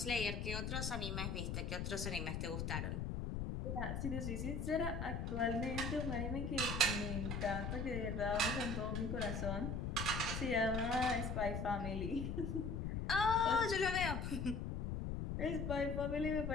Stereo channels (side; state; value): left; noise; rumble, 2 dB below the sound